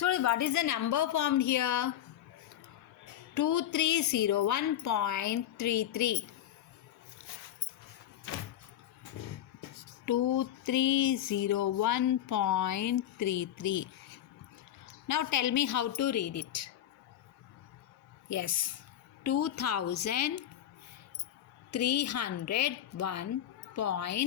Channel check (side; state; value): right; quieter; 11.5 dB